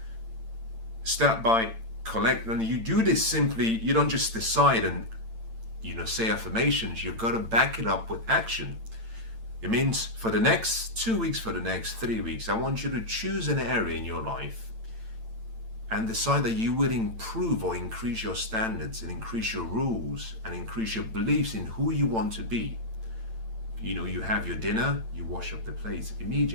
Start by and you do this simply. You don't just decide and say affirmations. You've got to back it up with action. It means for the next 2 weeks, for the next 3 weeks, I want you to choose an area in your life and decide that you will improve or increase your standards and increase your rules and increase your beliefs in who you want to be. You have your dinner, you wash up the plates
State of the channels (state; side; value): late; left; 8.9 ms